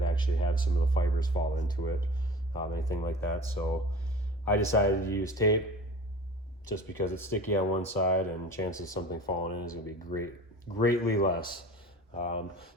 actually have some of the fibers fall into it, anything like that. So I decided to use tape just because it's sticky on one side and chances of something falling in is going to be greatly less. So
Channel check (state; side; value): normal; both; correlation 0.39